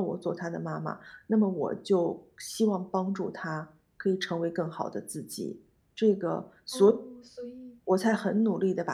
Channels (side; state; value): both; identical; correlation 1.00